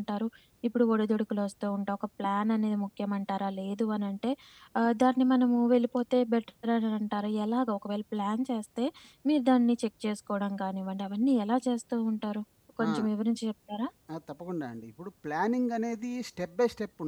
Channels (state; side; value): identical; both; correlation 1.00